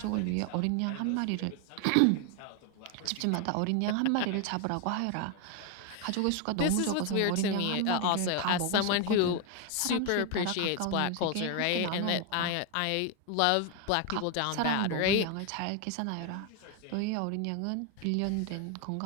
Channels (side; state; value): both; different; correlation 0.01